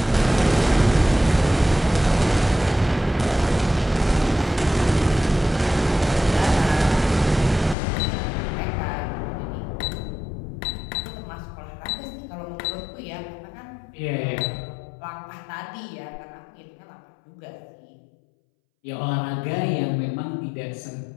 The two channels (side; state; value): right; drops out; at 7.8 s